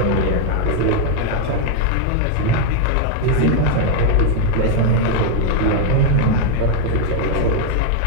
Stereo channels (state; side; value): different; both; correlation 0.00